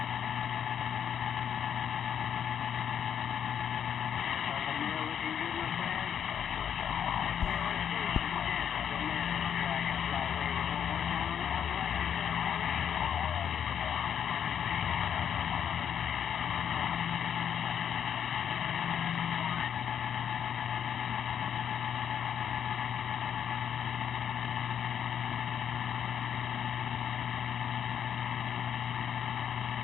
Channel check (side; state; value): right; quieter; 8.7 dB